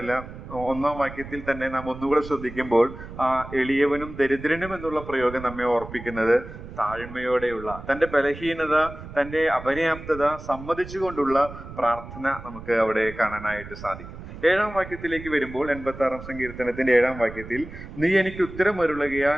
1-ാം വാക്യത്തിൽ തന്നെ നാം ഒന്നുകൂടെ ശ്രദ്ധിക്കുമ്പോൾ ആ എളിയവനും ദരിദ്രനും എന്നുള്ള പ്രയോഗം നമ്മെ ഓർപ്പിക്കുന്നത് താഴ്മയോടെയുള്ള, തൻ്റെ ബലഹീനത, തൻ്റെ അപര്യാപ്തത സമ്മതിച്ചുകൊണ്ടുള്ള പ്രാർത്ഥന നമുക്ക് അവിടെ കാണാനായിട്ട് സാധിക്കും. 7-ാം വാക്യത്തിലേക്ക് വരുമ്പോൾ 86-ാം സങ്കീർത്തനത്തിന്റെ 7-ാം വാക്യത്തിൽ, നീ എനിക്ക്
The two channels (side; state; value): right; noise; rumble, 13 dB below the sound